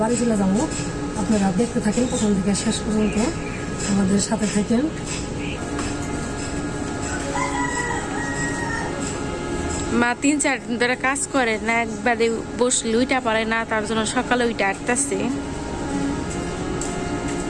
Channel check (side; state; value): both; identical; correlation 1.00